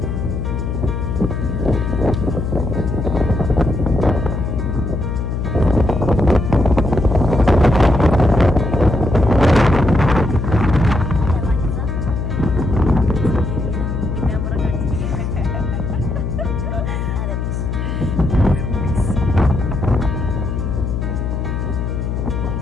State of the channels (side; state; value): left; noise; hum, 2 dB below the sound